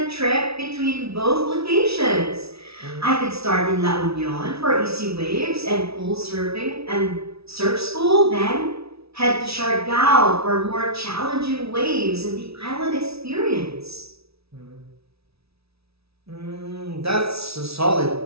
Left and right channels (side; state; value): left; late; 0.77 ms